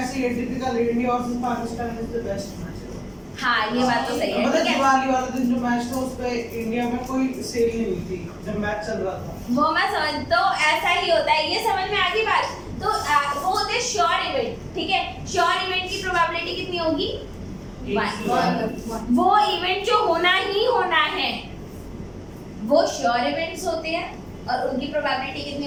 ही typical India versus Pakistan is the best match. हाँ, ये बात तो सही है, मतलब ठीक है। दिवाली वाले दिन जो मैच था उस पे इंडिया में कोई सेल नहीं हुई थी जब मैच चल रहा था। वो मैं समझ, तो ऐसा ही होता है, ये समझ में आ गई बात। तो वो होते हैं श्योर इवेंट, ठीक है। श्योर इवेंट की प्रोबेबिलिटी कितनी होगी? 1। वो इवेंट जो होना ही होना है वो श्योर इवेंट्स होते हैं और उनकी प्रोबेबिलिटी कितनी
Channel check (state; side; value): identical; both; correlation 1.00